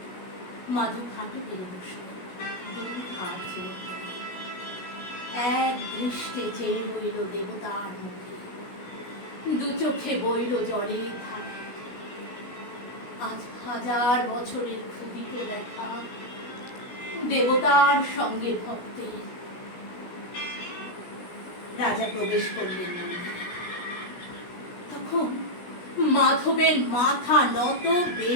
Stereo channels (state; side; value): late; right; 16 ms